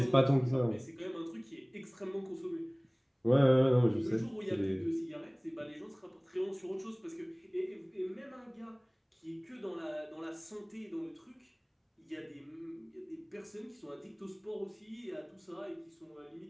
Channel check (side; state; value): both; identical; correlation 1.00